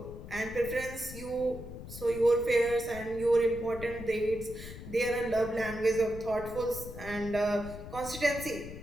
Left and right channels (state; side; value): noise; left; rumble, 12 dB below the sound